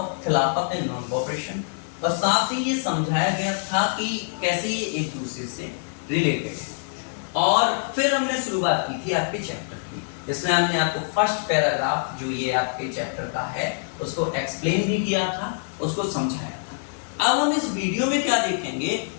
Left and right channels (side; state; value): right; silent; digital silence